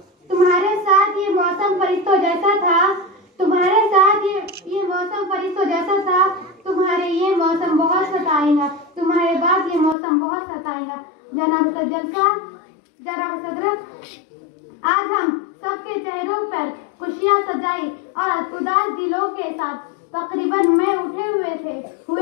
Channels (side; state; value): right; drops out; at 10.0 s